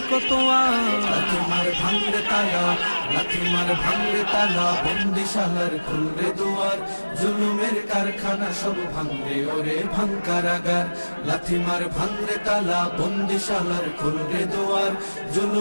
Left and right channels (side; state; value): both; inverted; correlation -1.00